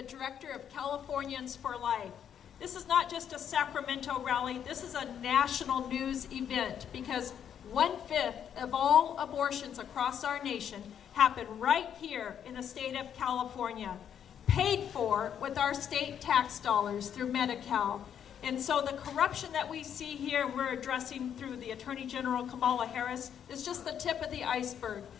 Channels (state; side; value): quieter; right; 8.8 dB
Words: director of Californians for Life. This is not just a Sacramento rally, this is a national news event because 1/5 of all abortions across our nation happen right here in the state of California, paid for with our state tax dollars through Medi-Cal. And so the corruption that we see here, we're addressing through the Attorney General Kamala Harris, is just the tip of the iceberg.